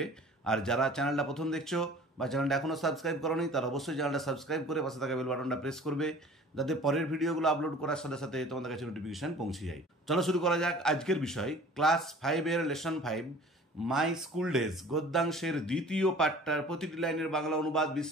আর যারা চ্যানেলটা প্রথম দেখছো বা চ্যানেলটা এখনও সাবস্ক্রাইব করোনি তারা অবশ্যই চ্যানেলটা সাবস্ক্রাইব করে পাশে থাকা বেল বাটনটা প্রেস করবে, যাতে পরের ভিডিওগুলো আপলোড করার সাথে সাথে তোমাদের কাছে নোটিফিকেশন পৌঁছে যায়। চলো শুরু করা যাক আজকের বিষয়। ক্লাস 5-এর লেসন 5 মাই স্কুল ডেজ গদ্যাংশের দ্বিতীয় পাঠটার প্রতিটি লাইনের বাংলা অনুবাদ,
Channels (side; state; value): both; normal; correlation 0.46